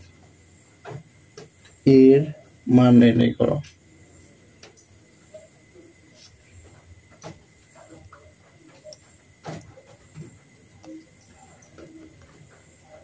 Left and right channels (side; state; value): both; identical; correlation 1.00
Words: এর মান নির্ণয় করো।